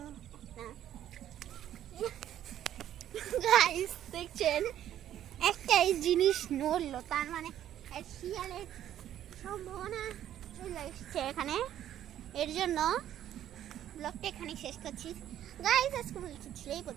একটা গাইস দেখছেন একটাই জিনিস নড়লো, তার মানে শিয়ালের সম্ভাবনা চলে এসছে এখানে। এর জন্য ব্লগটা এখানে শেষ করছি গাইস। আজকে বলছি ছিল এই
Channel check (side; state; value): left; quieter; 11.4 dB